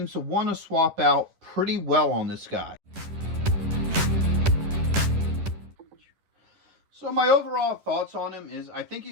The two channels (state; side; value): late; left; 10 ms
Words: to want to swap out pretty well on this guy. So my overall thoughts on him is I think